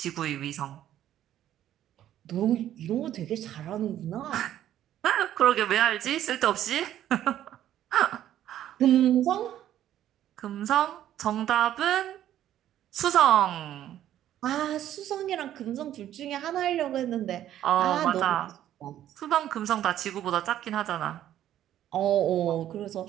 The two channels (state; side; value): quieter; left; 11.9 dB